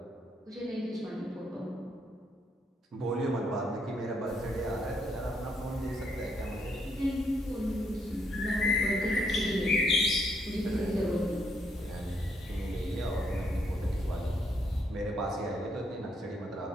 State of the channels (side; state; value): both; normal; correlation 0.74